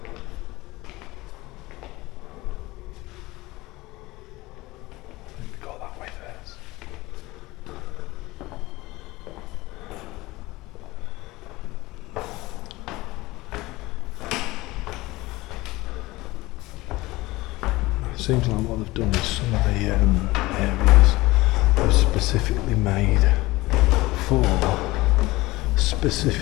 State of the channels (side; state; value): right; quieter; 20.1 dB